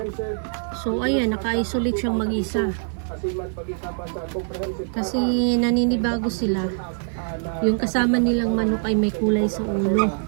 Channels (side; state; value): left; silent; digital silence